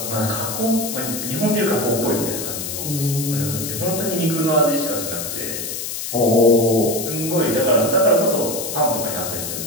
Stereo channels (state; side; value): noise; left; hiss, 5 dB below the sound